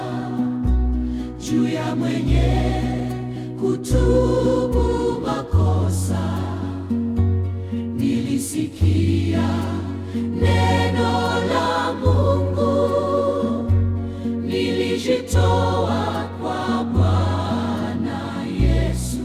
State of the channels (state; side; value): identical; both; correlation 1.00